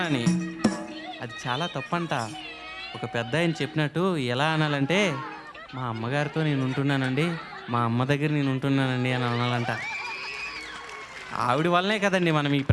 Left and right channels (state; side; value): identical; both; correlation 1.00